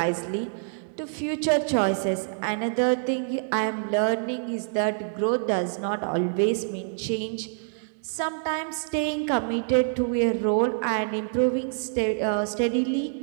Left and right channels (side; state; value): left; silent; digital silence